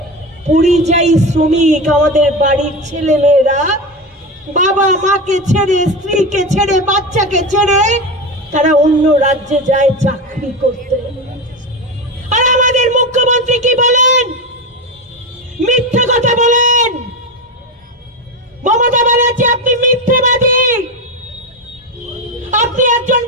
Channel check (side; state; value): both; normal; correlation 0.19